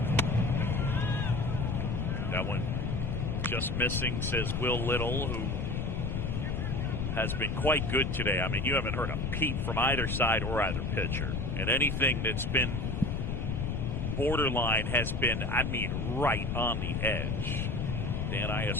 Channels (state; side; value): noise; left; rumble, 1 dB below the sound